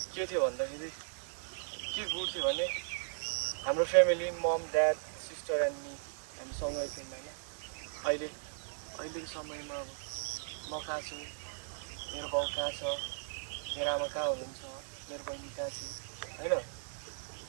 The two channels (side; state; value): left; silent; digital silence